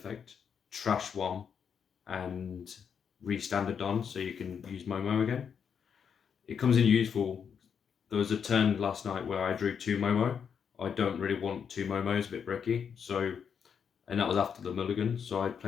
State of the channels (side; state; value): right; quieter; 7.1 dB